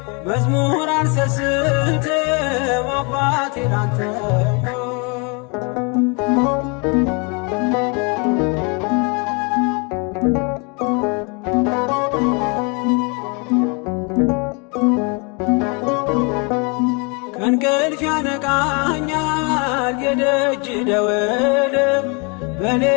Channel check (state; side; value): quieter; right; 32.1 dB